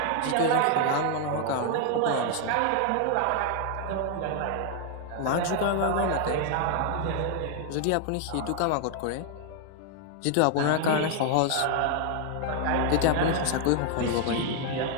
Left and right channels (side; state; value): both; different; correlation 0.00